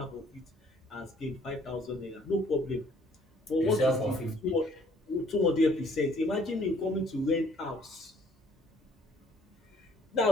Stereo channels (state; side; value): normal; both; correlation 0.60